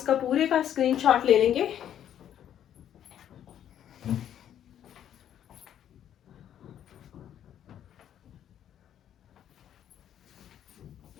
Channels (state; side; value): quieter; right; 10.3 dB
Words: पूरे का स्क्रीनशॉट ले लेंगे।